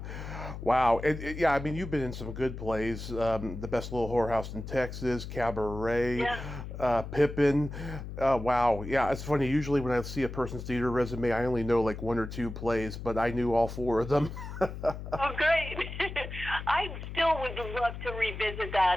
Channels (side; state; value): left; noise; hum, 9 dB below the sound